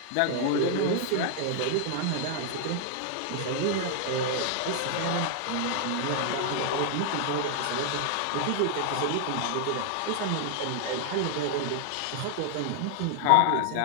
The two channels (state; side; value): different; both; correlation 0.00